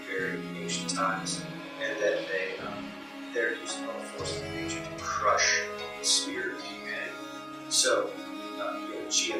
very ancient times, and that they're using all the forces of nature to crush the spirit of humanity. So,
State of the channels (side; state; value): both; identical; correlation 1.00